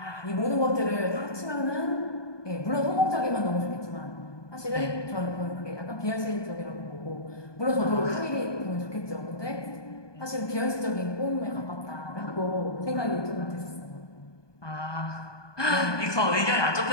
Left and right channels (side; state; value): right; late; 1.2 ms